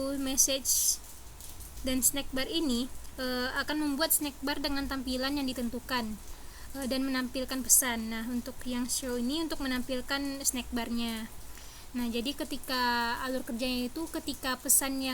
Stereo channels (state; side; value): identical; both; correlation 1.00